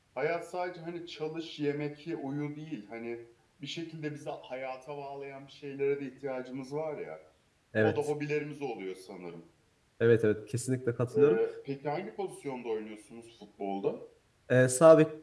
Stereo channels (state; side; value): identical; both; correlation 1.00